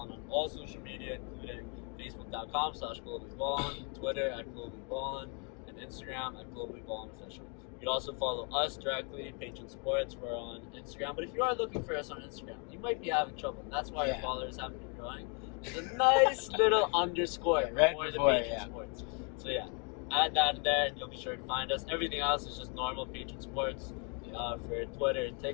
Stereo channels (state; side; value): quieter; right; 37.2 dB